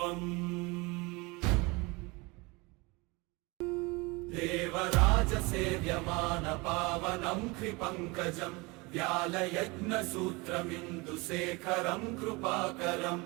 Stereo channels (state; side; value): quieter; left; 25.7 dB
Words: देवराजसेव्यमानपावनं कृपङ्कजं व्यालयज्ञसूत्रमिन्दुशेखरं कृपाकरं